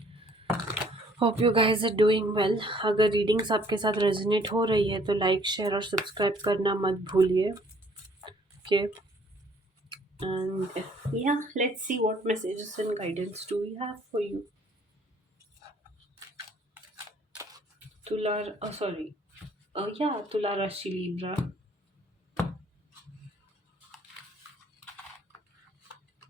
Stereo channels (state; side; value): normal; both; correlation 0.60